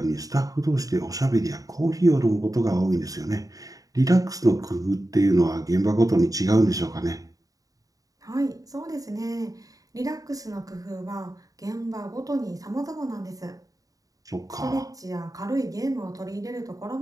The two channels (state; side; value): late; left; 0.17 ms